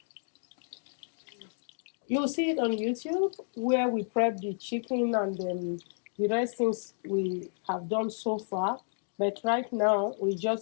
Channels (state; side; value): silent; right; digital silence